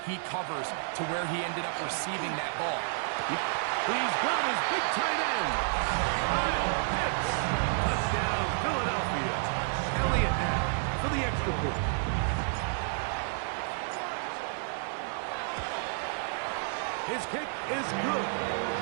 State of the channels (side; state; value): left; silent; 57 dB below the other